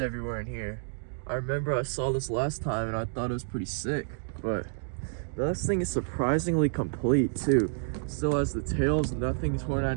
in here. I remember I saw this last time and I thought it was pretty sick, but this thing is surprisingly complete too. Still has the tails, nothing torn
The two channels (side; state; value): left; silent; digital silence